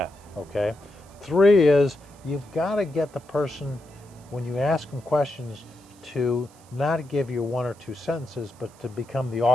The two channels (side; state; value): right; noise; hiss, 27 dB below the sound